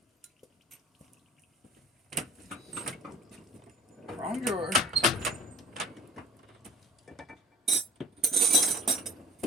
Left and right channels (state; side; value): normal; both; correlation 0.48